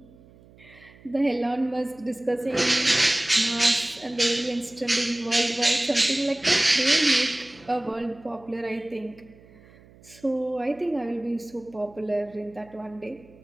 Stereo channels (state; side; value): noise; right; hum, 25 dB below the sound